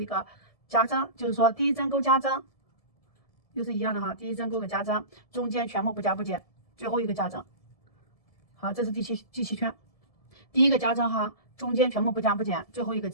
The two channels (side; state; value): right; late; 1.7 ms